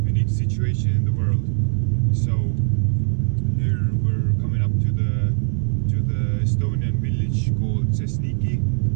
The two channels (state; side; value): silent; left; 65 dB below the other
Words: situation in the world. So here we're coming up to the Estonian village called Sesniki.